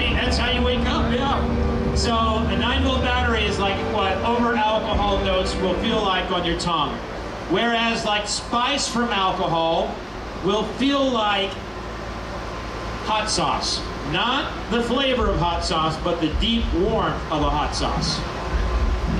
that's how you wake up, yeah. So a 9-volt battery is like what over alcohol notes will feel like on your tongue. Whereas like spice from alcohol will feel like hot sauce. Not the flavor of hot sauce, but the deep warmth of a hot sauce.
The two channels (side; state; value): both; identical; correlation 1.00